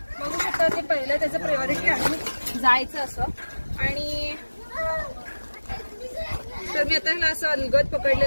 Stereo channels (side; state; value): both; inverted; correlation -1.00